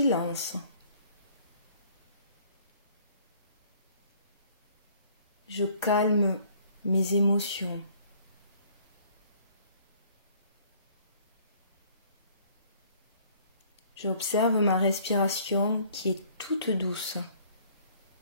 Je calme mes émotions. J'observe ma respiration qui est toute douce.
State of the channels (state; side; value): inverted; both; correlation -0.58